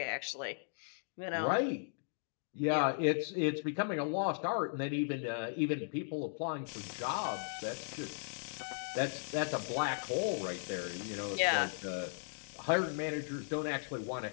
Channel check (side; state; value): right; silent; digital silence